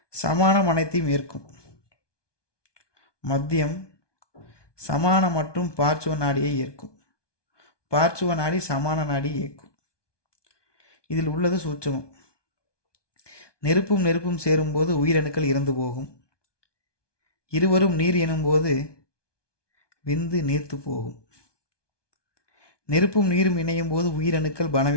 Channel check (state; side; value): late; right; 1.2 ms